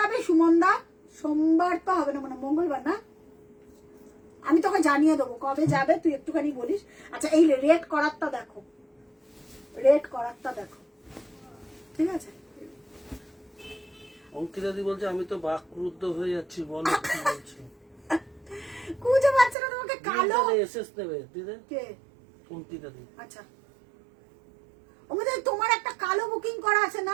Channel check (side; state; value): left; drops out; at 19.6 s